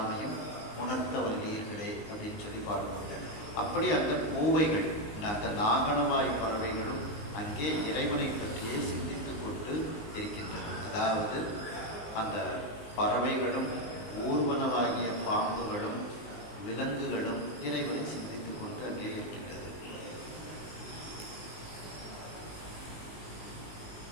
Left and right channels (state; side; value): late; right; 20 ms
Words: உணர்த்த வல்லீர்களே அப்படின்னு சொல்லி பாடுவாங்க. அப்படி அந்த பூவைகள் அந்த நாகனவாய் பறவைகளும் அங்கே இறைவனை பற்றியே சிந்தித்துக் கொண்டு இருக்கின்றன. அதாவது அந்த பறவைகளும் ஊர்வனவாகிய பாம்புகளும் விலங்குகளும் இறைவனை சிந்தித்துக் கொண்டு அங்கே இருக்கின்றது.